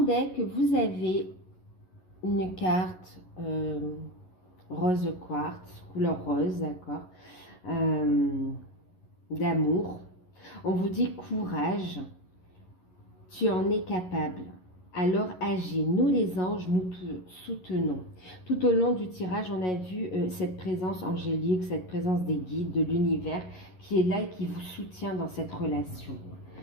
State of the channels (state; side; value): late; right; 11 ms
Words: vous avez une carte rose quartz, couleur rose, d'accord, d'amour. On vous dit courage, tu en es capable. Alors agis, nous les anges, nous te soutenons. Tout au long du tirage, on a vu cette présence angélique, cette présence des guides, de l'univers qui est là et qui vous soutient dans cette relation.